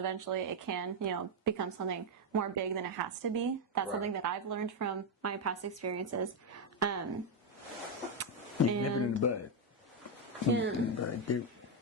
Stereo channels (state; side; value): normal; both; correlation 0.03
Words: it can, become something more big than it has to be. That's something that I've learned from my past experiences. Nip it in the bud. Nip it in the bud, dude.